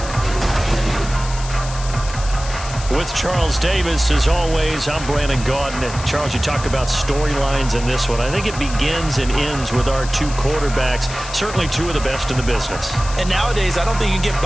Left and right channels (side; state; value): left; noise; hiss, 12 dB below the sound